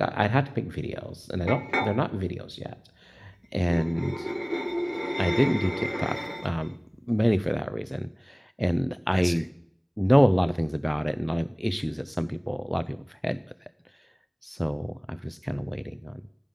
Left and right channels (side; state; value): both; identical; correlation 1.00